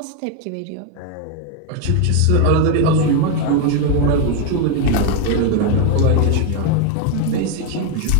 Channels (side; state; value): both; different; correlation 0.01